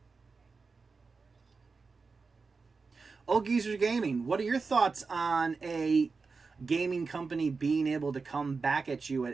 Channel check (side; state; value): left; quieter; 4.5 dB